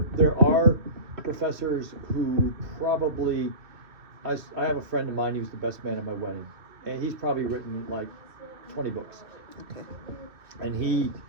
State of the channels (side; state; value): left; late; 2.6 ms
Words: are professors who probably, I have a friend of mine, he was the best man at my wedding, and he's probably written like 20 books. Okay. And he